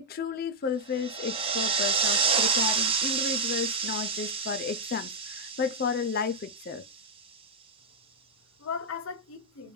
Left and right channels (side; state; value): both; normal; correlation -0.05